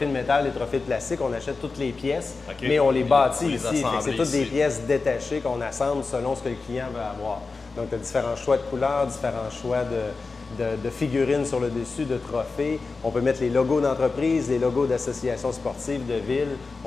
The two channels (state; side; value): quieter; right; 4.1 dB